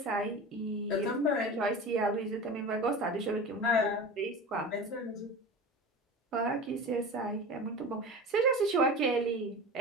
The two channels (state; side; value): normal; both; correlation 0.32